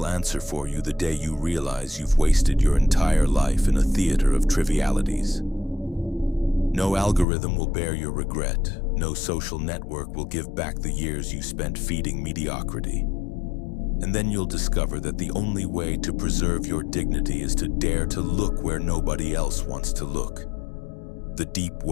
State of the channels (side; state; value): right; drops out; at 7.2 s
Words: answer for you the day you realize you've wasted your entire life in a theater of trivialities. No algorithm will bear your regret. No social network will give back the years you spent feeding mediocrity. And then you'll discover that the only way to preserve your dignity is to dare to look where nobody else wants to look. The deep